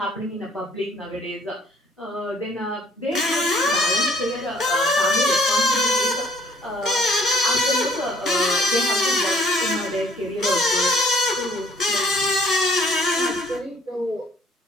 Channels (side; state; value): both; normal; correlation 0.58